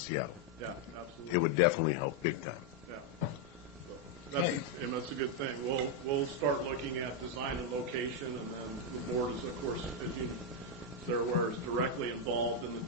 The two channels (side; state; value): both; normal; correlation 0.01